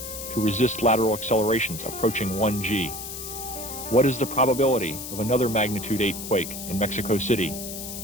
to resist lateral accelerations approaching 1 G? What is the probability of another magnitude 8 quake in Mexico City?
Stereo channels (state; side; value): noise; left; hiss, 8 dB below the sound